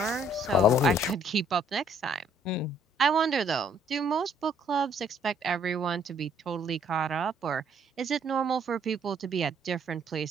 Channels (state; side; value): normal; both; correlation 0.64